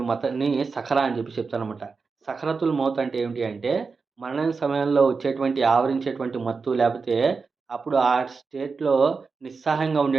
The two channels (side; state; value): left; quieter; 4.7 dB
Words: మత్తుని సఖరా అని చెప్పి చెప్తారనమాట. సఖరతుల్ మౌత్ అంటే ఏమిటి అంటే, మరణం సమయంలో వచ్చేటువంటి ఆవరించేటువంటి మత్తు లేపోతే అప్పుడు ఆ స్టేట్‌లో నిస్సహాయంగా